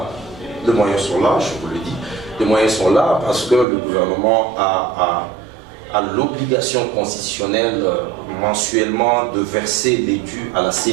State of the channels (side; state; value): left; drops out; at 3.7 s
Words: Les moyens sont là, je vous le dis. Les moyens sont là parce que le gouvernement a l'obligation constitutionnelle mensuellement de verser les dus à la